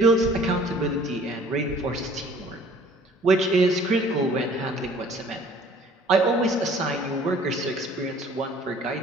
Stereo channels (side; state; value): both; normal; correlation 0.53